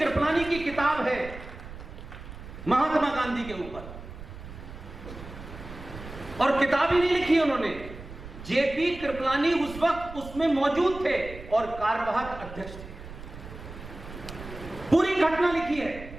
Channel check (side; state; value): right; noise; rumble, 13 dB below the sound